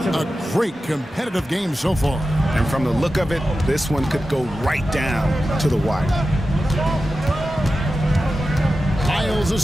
A great competitive game so far. And from the look of it, this one could go right down to the wire. Isles a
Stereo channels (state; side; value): normal; both; correlation 0.92